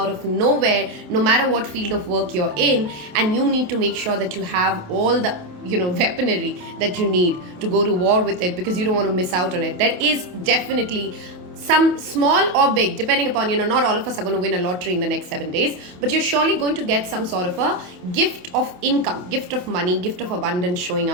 of nowhere, no matter what field of work you're in, and you need to make sure that you have all the weaponry that you need to go to war with it, because you don't want to miss out on it. There is definitely some small or big, depending upon, not all of us are going to win a lottery in the next 7 days, but you're surely going to get some sort of a gift of income, gift of money, gift of abundance showing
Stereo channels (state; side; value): late; left; 28 ms